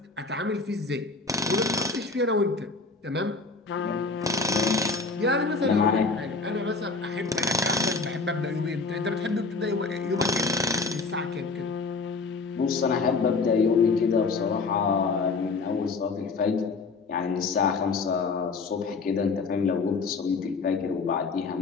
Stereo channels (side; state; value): right; quieter; 4.2 dB